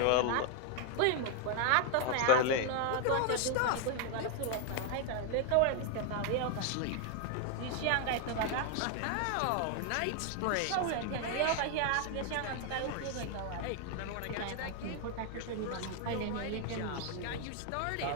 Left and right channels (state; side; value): different; both; correlation 0.00